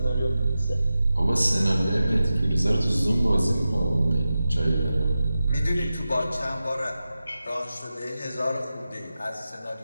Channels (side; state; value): both; inverted; correlation -0.93